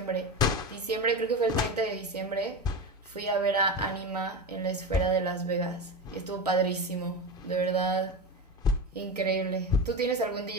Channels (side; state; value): both; normal; correlation 0.21